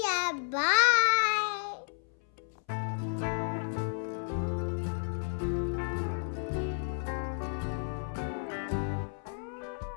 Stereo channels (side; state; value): right; silent; 56 dB below the other